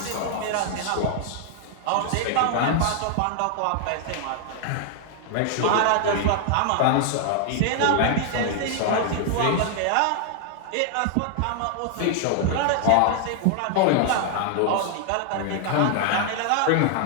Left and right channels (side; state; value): both; different; correlation 0.00